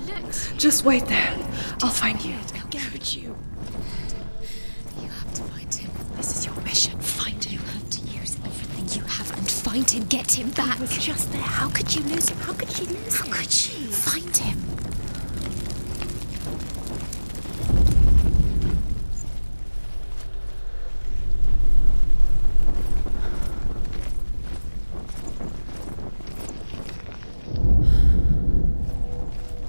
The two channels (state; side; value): inverted; both; correlation -1.00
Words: Look. Just wait there. I'll find you. How could you? You have to find him. This is your mission. Find him. You have to use everything you have and find him. Get him back. He was just there. How could you lose him? How could you lose him? How could you? Find him.